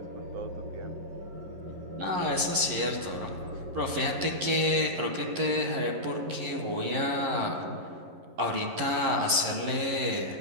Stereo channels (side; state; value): left; late; 11 ms